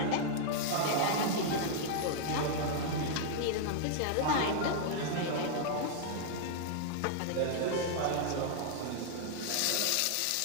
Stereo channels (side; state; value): both; different; correlation -0.01